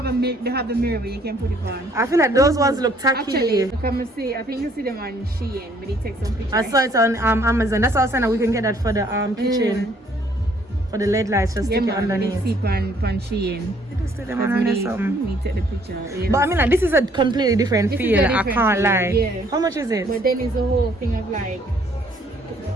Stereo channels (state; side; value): normal; both; correlation 0.63